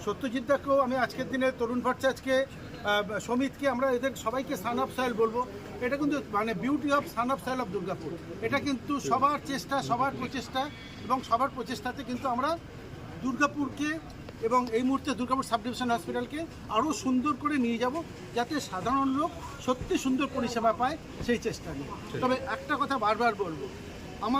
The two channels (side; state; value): both; identical; correlation 1.00